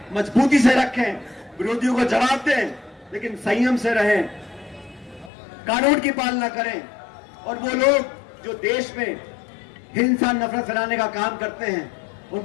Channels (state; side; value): drops out; right; at 5.3 s